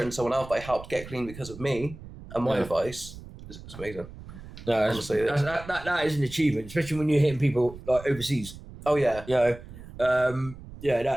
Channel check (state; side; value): noise; right; rumble, 15 dB below the sound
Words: someone else that I helped get clean because of me and my advice is amazing. No, that is an achievement, especially when you're hitting people like overseas. Oh yeah, you know,